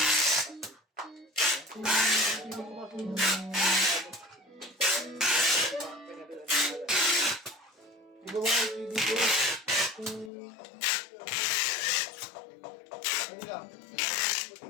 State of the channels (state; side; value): drops out; right; at 10.3 s